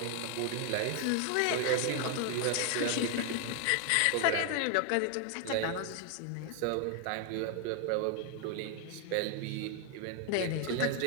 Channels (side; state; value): both; different; correlation 0.00